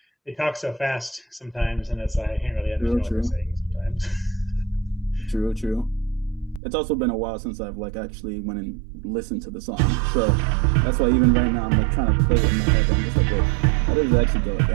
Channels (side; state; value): left; drops out; at 6.6 s